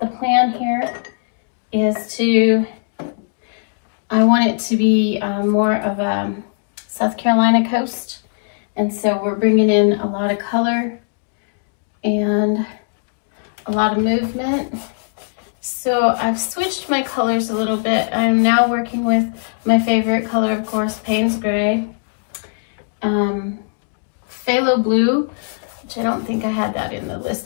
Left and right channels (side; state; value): right; silent; digital silence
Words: the plan here, is I want it to be more of a South Carolina coast, and so we're bringing in a lot of color and a lot of movement. So I've switched my colors a little bit. I'm now working with my favorite color, of course, Payne's Gray, Phthalo Blue, which I don't think I had that in the